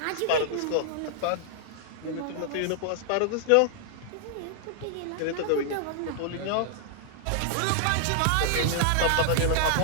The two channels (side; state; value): both; different; correlation -0.01